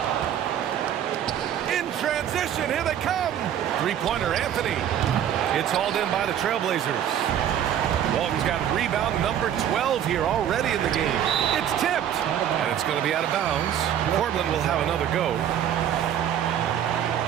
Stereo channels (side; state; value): left; quieter; 10.0 dB